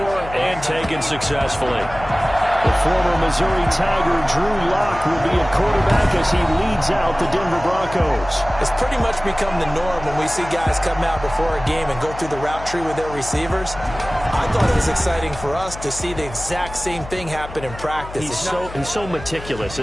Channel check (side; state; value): left; noise; hum, 13 dB below the sound